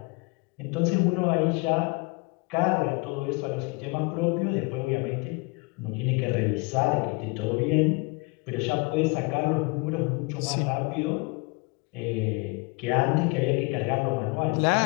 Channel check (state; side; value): quieter; right; 29.1 dB